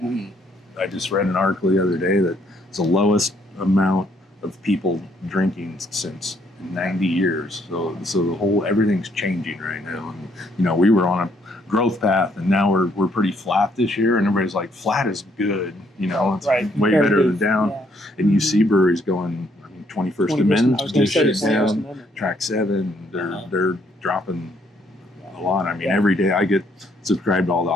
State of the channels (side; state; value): both; normal; correlation 0.69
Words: I just read an article the other day that it's the lowest amount of people drinking since 90 years. So the everything's changing right now. And we were on a growth path, and now we're pretty flat this year, and everybody's like, flat is good. It's way better than down. Yeah. And you see breweries going, 21st Amendment, I was gonna say shit 21st down. Amendment. Track 7, they're dropping a lot. I mean, every day I get subscribed to all the